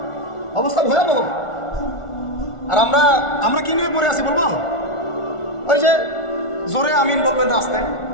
অবস্থা ভয়াবহ। আর আমরা কি নিয়ে পড়ে আছি বলবো? ওই যে জোরে আমিন বলবেন রাস্তে,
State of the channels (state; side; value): late; right; 1.4 ms